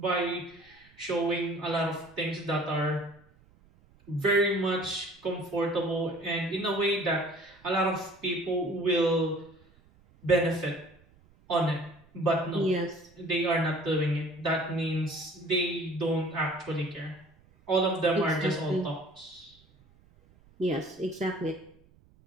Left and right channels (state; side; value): noise; right; rumble, 29 dB below the sound